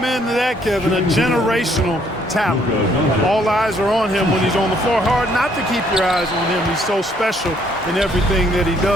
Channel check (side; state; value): both; normal; correlation 0.66